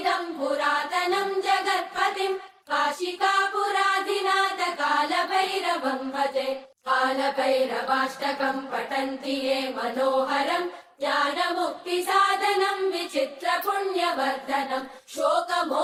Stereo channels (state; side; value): identical; both; correlation 1.00